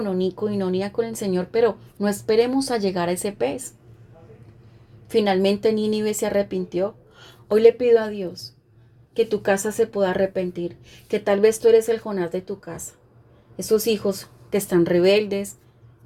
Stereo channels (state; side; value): identical; both; correlation 1.00